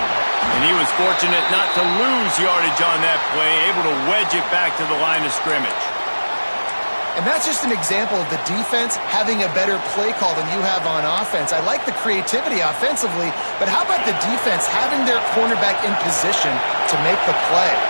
And he was fortunate not to lose yardage on that play, able to wedge it back to the line of scrimmage. And that's just an example of the defense having a better play call than you have on offense. I like the creativity offensively, but how about the defense having their cornerback in position to make the play?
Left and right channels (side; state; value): both; inverted; correlation -1.00